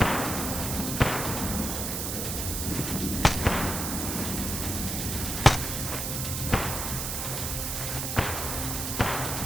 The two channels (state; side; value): noise; right; hiss, 2 dB below the sound